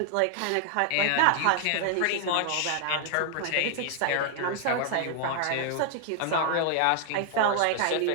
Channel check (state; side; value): different; both; correlation 0.00